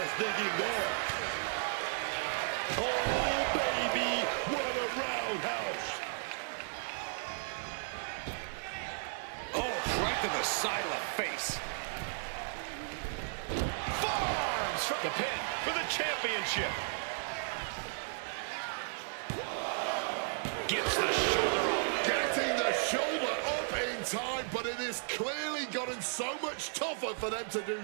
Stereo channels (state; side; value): silent; left; digital silence